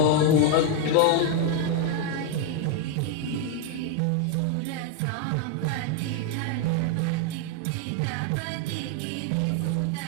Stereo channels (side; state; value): both; different; correlation 0.00